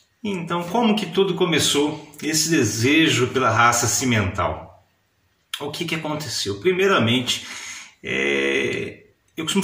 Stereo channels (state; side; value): identical; both; correlation 1.00